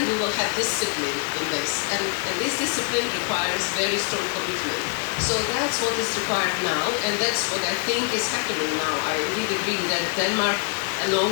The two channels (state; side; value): quieter; right; 38.6 dB